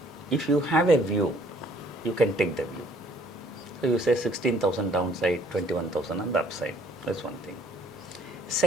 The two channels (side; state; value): both; normal; correlation 0.60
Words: if you have a view, you can take the view. So you say 16,000 downside, 21,000 on the upside. That's one thing.